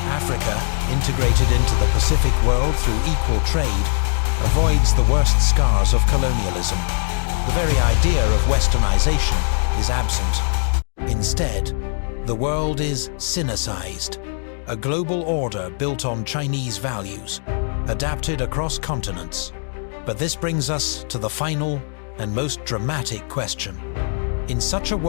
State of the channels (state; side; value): silent; right; digital silence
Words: Africa, integrated into the Pacific world through equal trade, avoids the worst scars of colonialism. The very idea of westernization is absent. Instead, the world is Sinicized, a global order built on Chinese values, adapted across continents. But this brings us to the final and most dramatic question. In such a